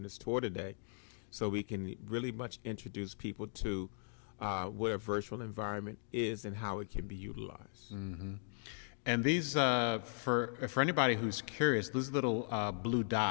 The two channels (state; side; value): silent; right; digital silence